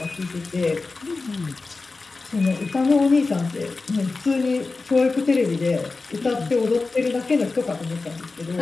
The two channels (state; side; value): quieter; right; 3.8 dB